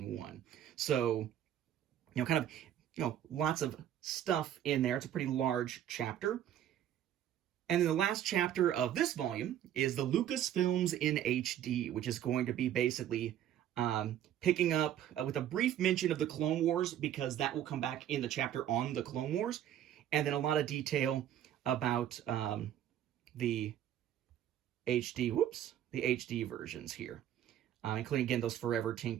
So, lots of stuff in there. It's a pretty large chapter. And then the last chapter of this volume is the Lucasfilms in HD, which is going to be basically picking up with a brief mention of the Clone Wars, because that will come back in the chapter on the Clone Wars, and then a lot of detail about the HD versions here, including, again, those forever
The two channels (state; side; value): quieter; left; 11.0 dB